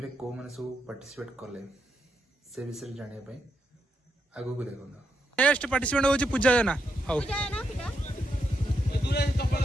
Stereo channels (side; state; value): both; normal; correlation 0.81